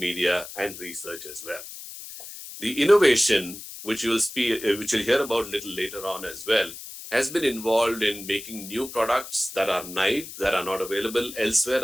and research as well. The innovation, which you'll hear about a little later on as well, has been involved in making new products that are naive, that are not available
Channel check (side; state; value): left; noise; hiss, 12 dB below the sound